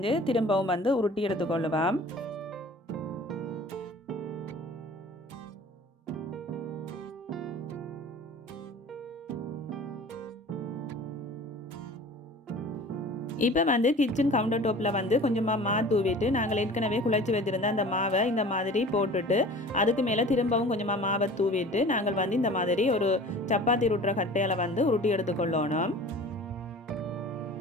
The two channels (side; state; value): both; normal; correlation 0.42